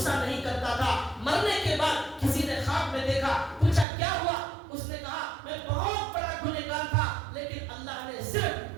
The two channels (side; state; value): left; drops out; at 3.9 s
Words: نہیں کرتا تھا. مرنے کے بعد کسی نے خواب میں دیکھا, پوچھا کیا ہوا, اس نے کہا میں بہت بڑا گنہگار تھا لیکن اللہ نے